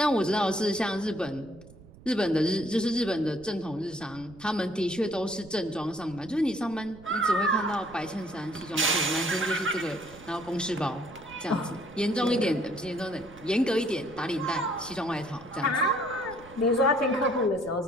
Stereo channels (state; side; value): noise; right; rumble, 21 dB below the sound